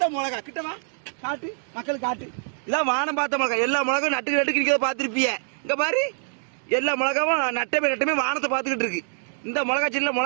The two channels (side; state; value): left; silent; 60 dB below the other